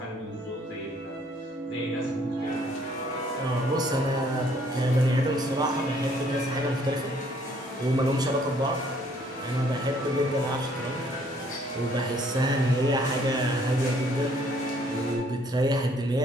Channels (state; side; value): normal; both; correlation 0.63